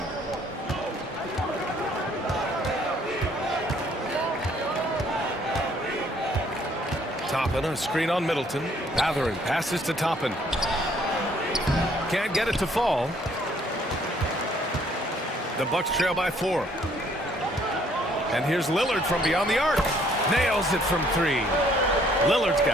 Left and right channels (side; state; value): both; normal; correlation 0.63